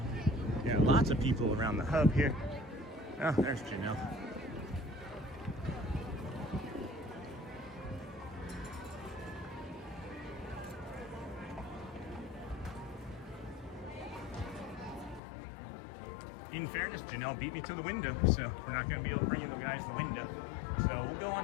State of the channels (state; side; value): drops out; right; at 15.2 s